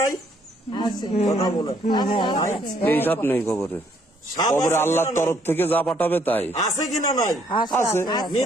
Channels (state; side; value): normal; both; correlation 0.67